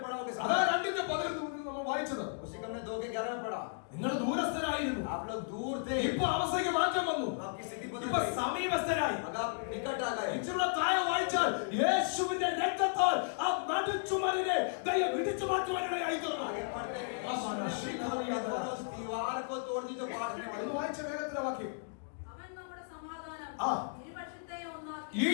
पड़ा होकर അതാ 2:11 നമ്മൾ വായിച്ചത്. उसी को हमने 2:11 में पढ़ा। നിങ്ങൾ ദൂരസ്ഥരായിരുന്നു, आप लोग दूर थे, ഇപ്പൊ അവസ്ഥയ്ക്ക് മാറ്റം വന്നു. तो आपकी स्थिति बदल ഇപ്പൊ गई। സമീപസ്ഥരായി. अब आप निकट आ गए। ഇച്ചിരി താഴെ വായിച്ചാൽ യേശുവിന്റെ രക്തത്താൽ ആ നടുച്ചുമരിനെ ദൈവം ഇടിച്ചു മാറ്റുവാനിടയായി തീർന്നു. आगे पढ़ते हैं हाँ, हाँ, उस दीवार को तोड़ दी जो बांटने वाली। വായിച്ച വേഗത്തിലെ വാക്യം. അവൻ നമ്മുടെ സമാധാനം ആ. ഇരുപക്ഷത്തെയും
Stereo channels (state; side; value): silent; right; digital silence